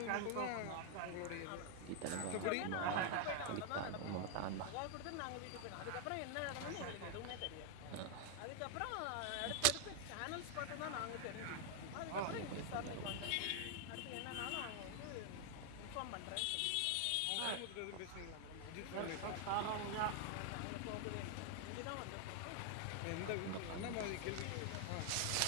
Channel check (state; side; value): different; both; correlation 0.00